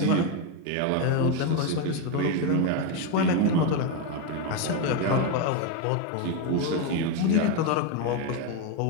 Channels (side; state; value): both; different; correlation 0.02